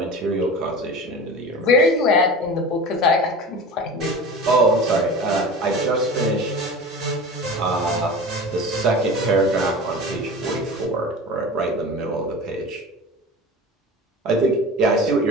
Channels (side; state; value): both; normal; correlation 0.34